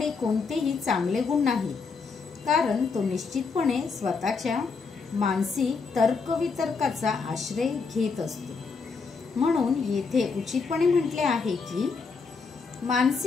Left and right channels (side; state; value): right; quieter; 4.9 dB